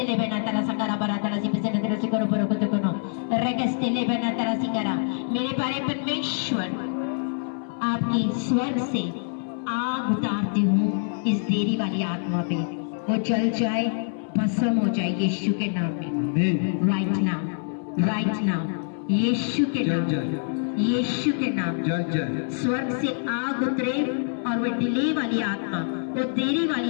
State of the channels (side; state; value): right; silent; digital silence